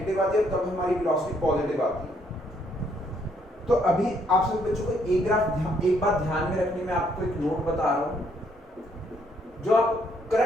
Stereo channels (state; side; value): normal; both; correlation 0.69